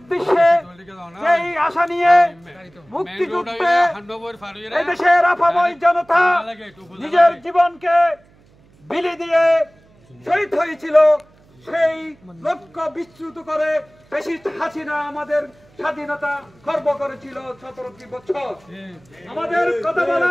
যেই আশা নিয়ে মুক্তিযুদ্ধে এই দেশের আপাময় জনতা নিজের জীবনকে বিলি দিয়ে শহীদ হয়েছিল, সেই লক্ষ্য বিচ্যুত করে ফ্যাসিস্ট হাসিনা আমাদের স্বাধীনতা খর্ব করেছিল 17টি বছর। আমাদের কথা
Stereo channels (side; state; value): right; noise; hum, 30 dB below the sound